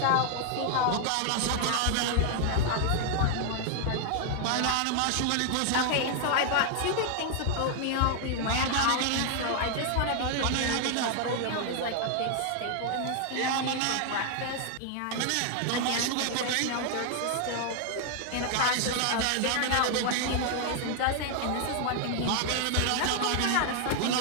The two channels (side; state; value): both; different; correlation 0.00